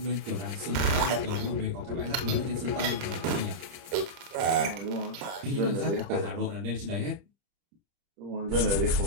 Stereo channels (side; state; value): left; late; 30 ms